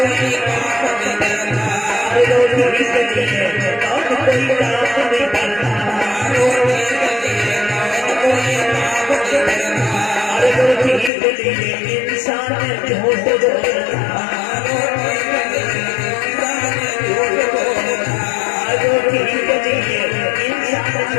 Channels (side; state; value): right; drops out; at 11.1 s